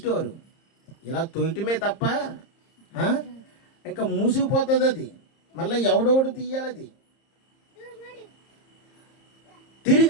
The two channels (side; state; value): right; late; 30 ms